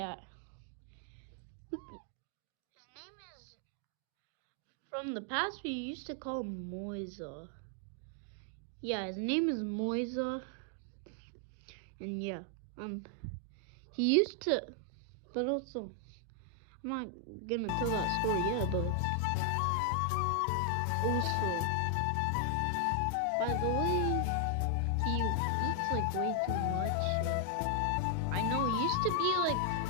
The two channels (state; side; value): different; both; correlation 0.00